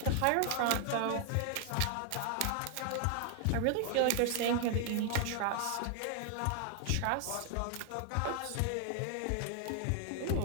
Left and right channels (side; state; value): both; different; correlation 0.00